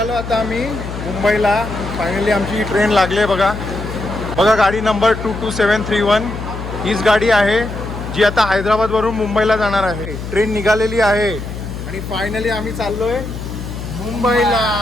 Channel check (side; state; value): left; noise; hum, 8 dB below the sound